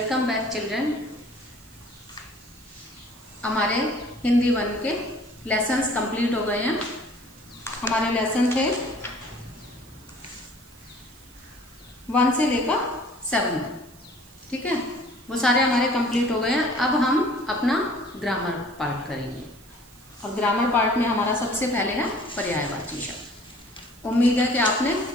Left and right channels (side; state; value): right; noise; hiss, 26 dB below the sound